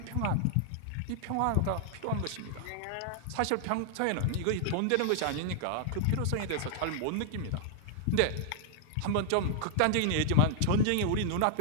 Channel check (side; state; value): both; different; correlation -0.01